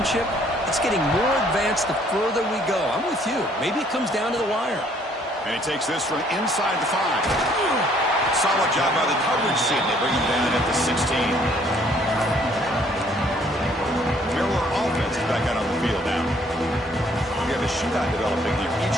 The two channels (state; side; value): normal; both; correlation 0.62